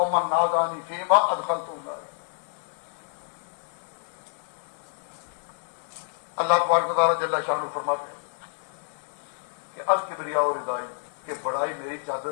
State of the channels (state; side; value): silent; right; digital silence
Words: نازانی فیما ادخلت النار۔ اللہ تبارک و تعالیٰ جل شانہ فرماتے ہیں کہ الکبریاء ردائی، کہ بڑائی میری